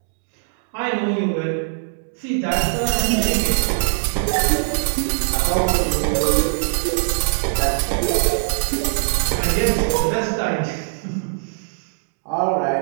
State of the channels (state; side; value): silent; left; digital silence